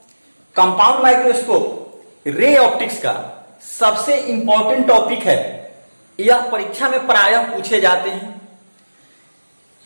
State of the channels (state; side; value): inverted; both; correlation -1.00